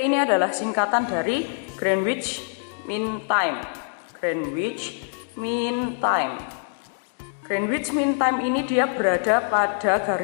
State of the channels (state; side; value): silent; right; digital silence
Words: ini adalah singkatan dari Greenwich Mean Time. Greenwich Mean Time. Greenwich Mean Time ini dia berada pada